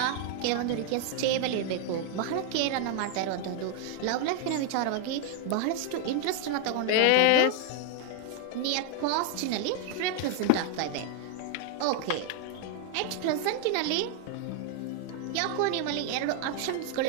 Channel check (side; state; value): both; different; correlation 0.00